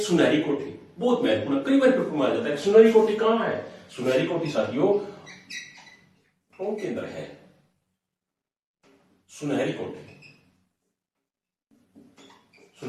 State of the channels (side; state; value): both; identical; correlation 1.00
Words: कोठी, बहुत महत्वपूर्ण, कई बार पेपर में आ जाता है। सुनहरी कोठी कहां है? सुनहरी कोठी साथियों टोंक के अंदर है। सुनहरी कोठी,